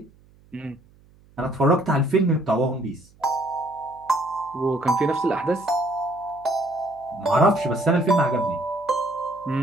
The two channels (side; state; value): right; noise; hum, 29 dB below the sound